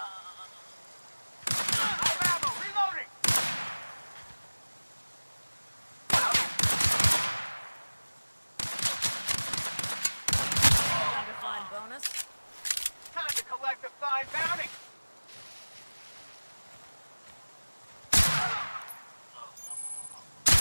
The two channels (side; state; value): both; inverted; correlation -1.00